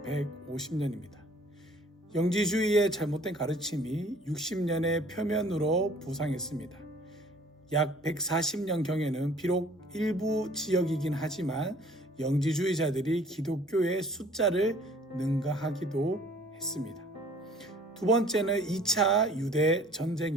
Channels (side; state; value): both; normal; correlation 0.54